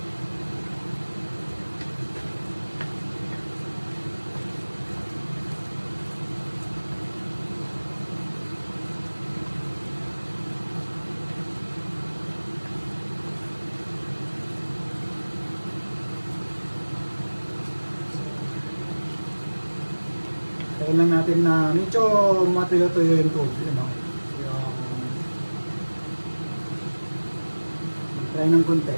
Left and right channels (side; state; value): both; inverted; correlation -1.00